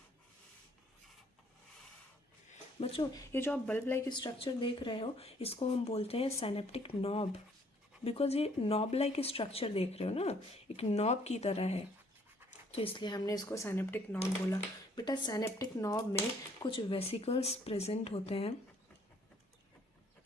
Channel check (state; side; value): normal; both; correlation 0.63